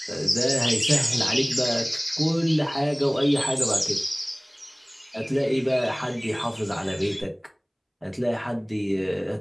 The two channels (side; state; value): both; identical; correlation 1.00